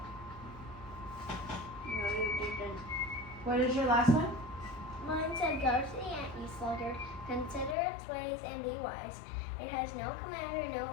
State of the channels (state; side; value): drops out; right; at 7.8 s